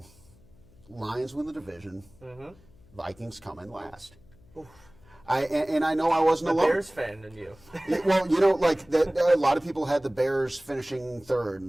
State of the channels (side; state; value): left; noise; hum, 27 dB below the sound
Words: Lions win the division, Vikings come in last. And I know I wasn't alone. Bears fan in you. Well, you know, like a lot of people had the Bears finishing third